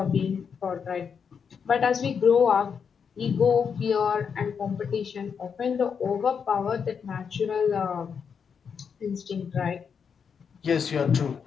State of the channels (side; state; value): right; quieter; 6.6 dB